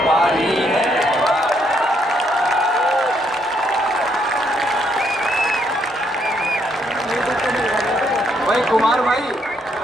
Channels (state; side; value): normal; both; correlation 0.73